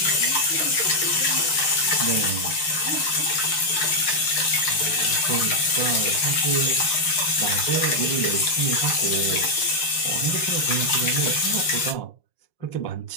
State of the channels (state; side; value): late; right; 6.5 ms